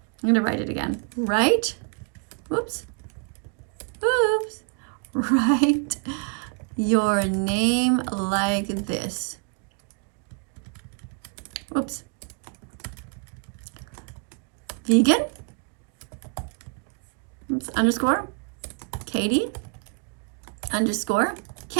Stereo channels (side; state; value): left; quieter; 37.2 dB